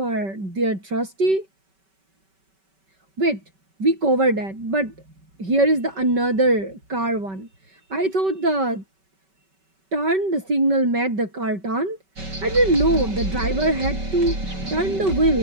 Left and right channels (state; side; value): late; left; 5.2 ms